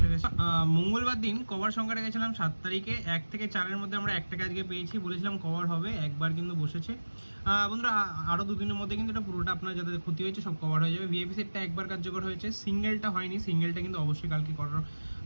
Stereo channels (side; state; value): both; inverted; correlation -1.00